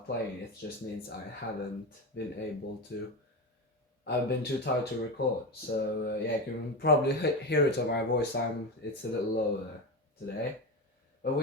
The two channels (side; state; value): both; normal; correlation 0.19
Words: playing. It just means I haven't been able to. I've been too tired to record. So yeah, you can probably hear it on my voice. It's a little lower today. But